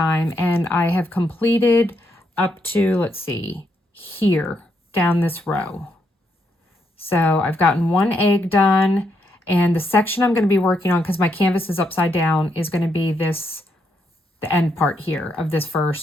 and I have completed up to, let's see, here down this row. So I've gotten one egg done, and the section I'm going to be working on, because my canvas is upside down, is going to be this, the end part here of this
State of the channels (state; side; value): normal; both; correlation 0.77